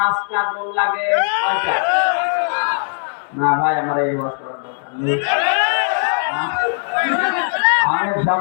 গোল লাগে। কয়টা? না ভাই, আমার এই ওয়াজ করার দরকার নেই। অনেক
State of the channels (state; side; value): silent; right; digital silence